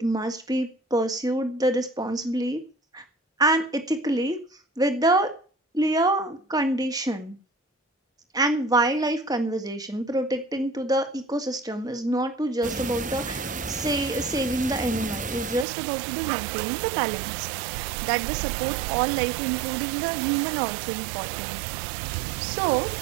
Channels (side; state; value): left; drops out; at 15.7 s